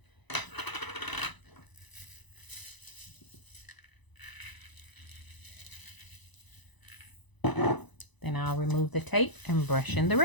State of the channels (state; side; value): late; right; 1.0 ms